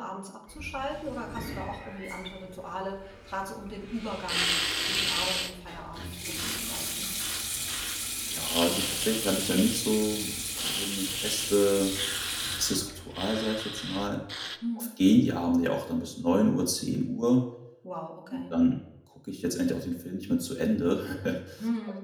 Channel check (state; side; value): identical; both; correlation 1.00